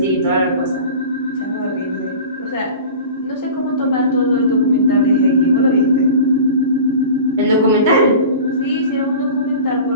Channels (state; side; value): inverted; both; correlation -0.37